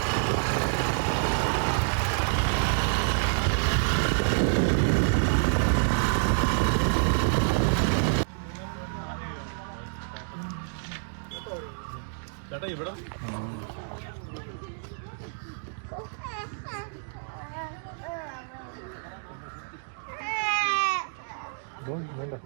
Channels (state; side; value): silent; left; digital silence